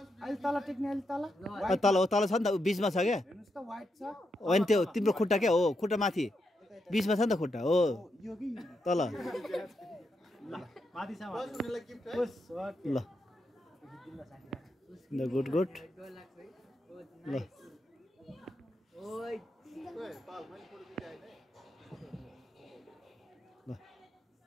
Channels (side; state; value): both; normal; correlation 0.83